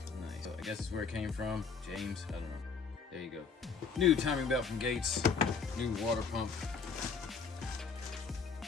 Nice. So I guess it's where it came from. James, I don't know. There you go. New timing belt from Gates. New water pump.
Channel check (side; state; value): right; quieter; 5.4 dB